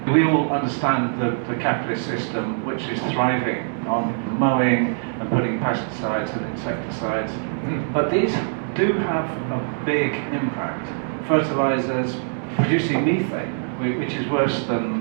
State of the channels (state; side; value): silent; left; digital silence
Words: We all understand the capitalist system, which is thriving on mowing and putting pesticides and insecticides. But these do have a big impact. Fertilizers producing methane, which is worse